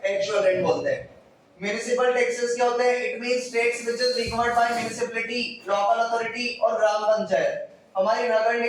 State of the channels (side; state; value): both; identical; correlation 1.00